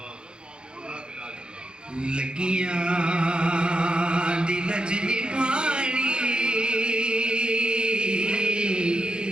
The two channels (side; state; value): left; late; 0.050 ms